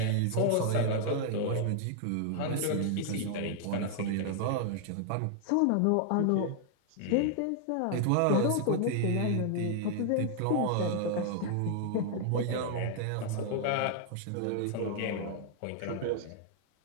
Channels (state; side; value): different; both; correlation 0.00